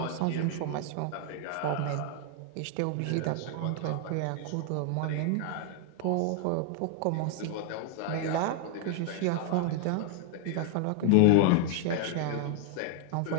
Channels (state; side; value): different; both; correlation 0.00